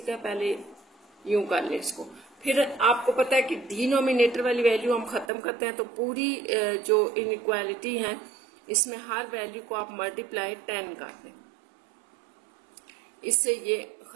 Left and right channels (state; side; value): drops out; left; at 5.3 s